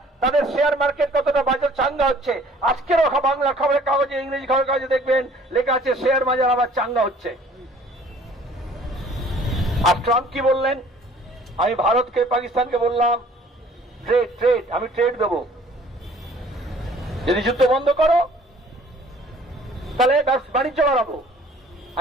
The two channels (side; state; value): both; normal; correlation 0.54